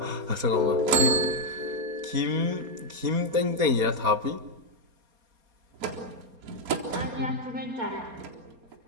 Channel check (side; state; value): left; late; 4.3 ms